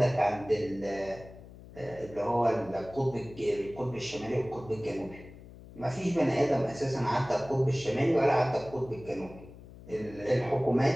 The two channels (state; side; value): noise; left; hum, 18 dB below the sound